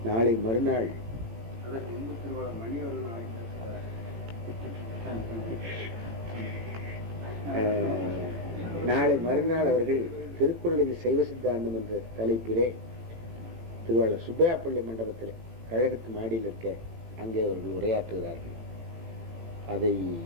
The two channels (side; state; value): left; late; 18 ms